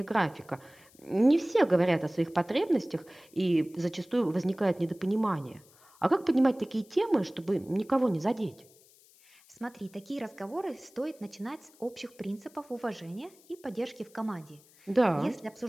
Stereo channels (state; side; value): noise; left; hiss, 27 dB below the sound